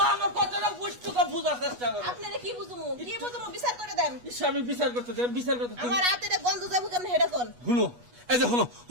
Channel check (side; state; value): left; late; 8.2 ms